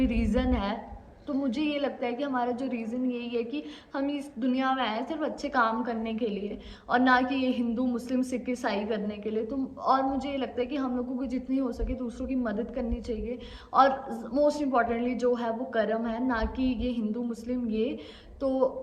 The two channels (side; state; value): both; identical; correlation 1.00